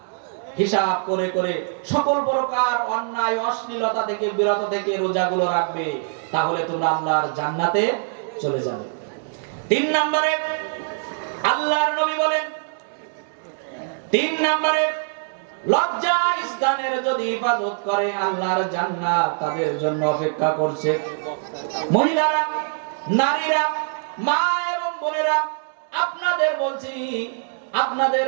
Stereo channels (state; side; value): silent; left; 63 dB below the other